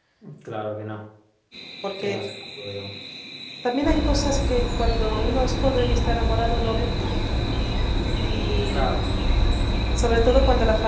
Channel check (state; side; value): identical; both; correlation 1.00